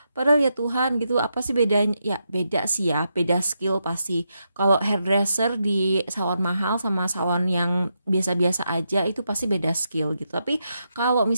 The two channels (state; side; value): inverted; both; correlation -0.83